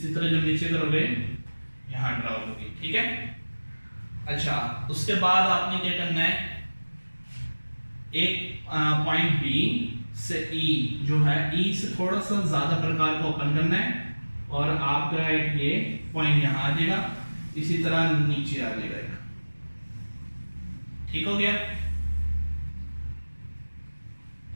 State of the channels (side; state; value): both; inverted; correlation -1.00